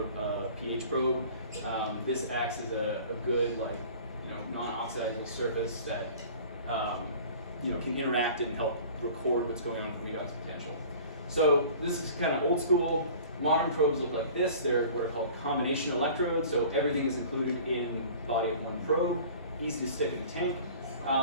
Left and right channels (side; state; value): both; inverted; correlation -0.45